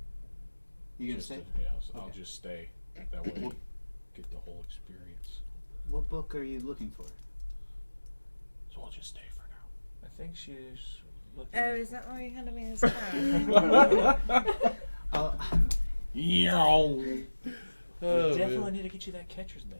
You gonna Just stay? to- yeah, I'll Okay. just stay. That way, get the whole experience. What book are you looking for? So I'll just stay for now. I think she's looking. Oh, is that why you handed me this card? We Oh, definitely man. need to get you that catcher's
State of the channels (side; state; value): both; inverted; correlation -1.00